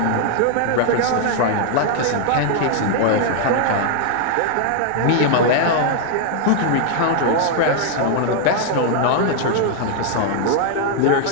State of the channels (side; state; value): both; different; correlation 0.00